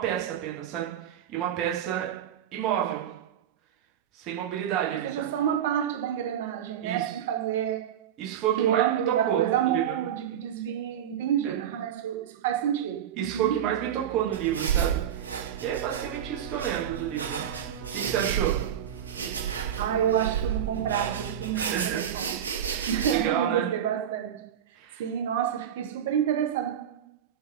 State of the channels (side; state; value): left; quieter; 9.6 dB